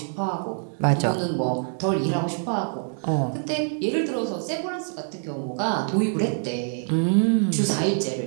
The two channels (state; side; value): silent; left; 61 dB below the other